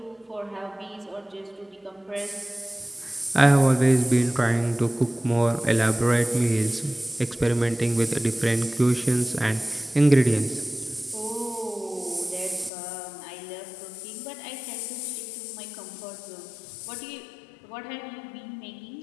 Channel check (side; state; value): right; drops out; at 12.7 s